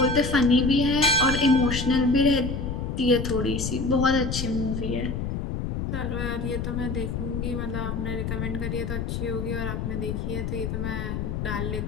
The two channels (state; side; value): noise; left; rumble, 3 dB below the sound